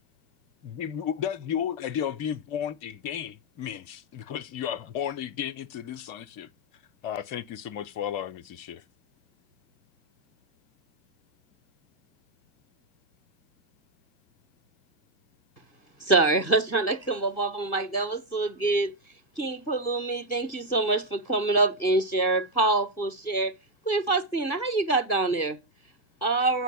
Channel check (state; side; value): late; right; 1.5 ms